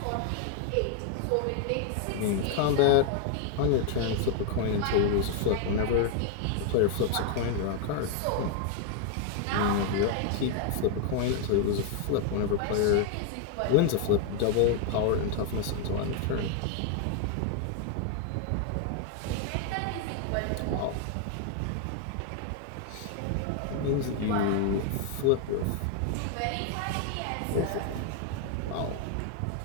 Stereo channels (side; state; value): both; different; correlation 0.00